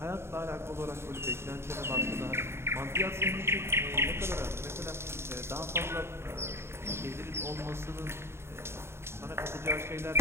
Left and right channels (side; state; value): left; late; 0.12 ms